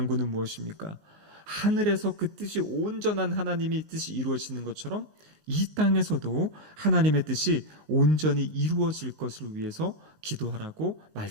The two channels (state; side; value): late; left; 19 ms